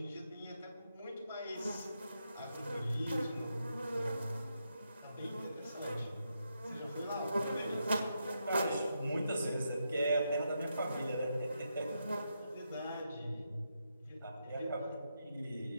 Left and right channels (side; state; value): both; inverted; correlation -0.83